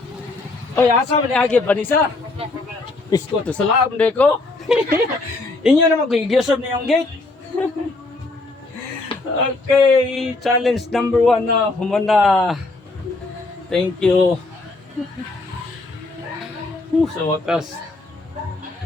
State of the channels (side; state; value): right; quieter; 3.2 dB